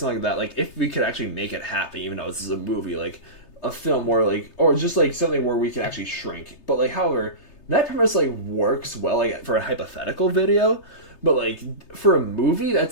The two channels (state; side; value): late; right; 3.3 ms